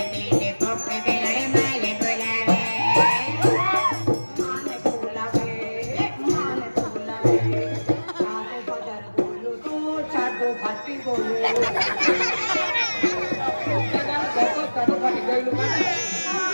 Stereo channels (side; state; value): both; inverted; correlation -1.00